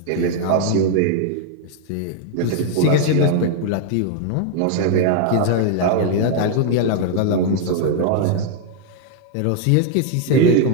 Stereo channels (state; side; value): different; both; correlation 0.00